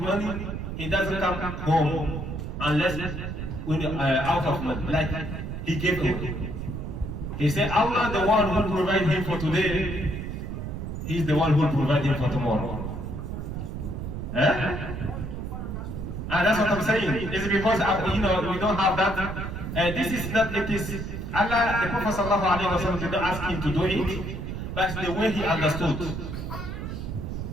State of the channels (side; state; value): right; noise; rumble, 6 dB below the sound